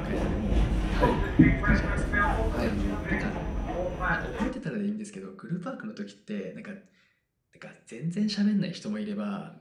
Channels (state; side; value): identical; both; correlation 1.00